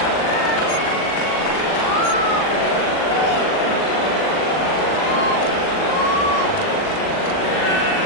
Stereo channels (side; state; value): right; late; 40 ms